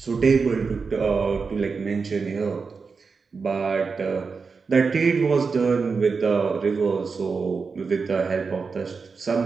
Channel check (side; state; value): left; quieter; 4.9 dB